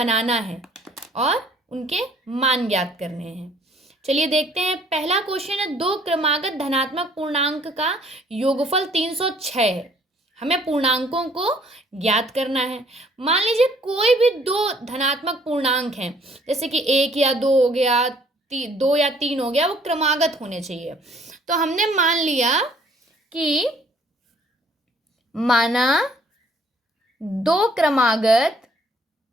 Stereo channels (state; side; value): normal; both; correlation 0.60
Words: है और उनके मान ज्ञात करने हैं। चलिए देखते हैं। पहला क्वेश्चन है, दो क्रमागत धनात्मक पूर्णांक का योगफल 306 है। हमें पूर्णांकों को ज्ञात करना है। मान लीजिए कोई भी दो धनात्मक पूर्णांक हैं, जैसे कि 1 या 2 हो गया, 2 या 3 हो गया, वो क्रमागत होने चाहिए। तो हमने मान लिया कि माना दो क्रमागत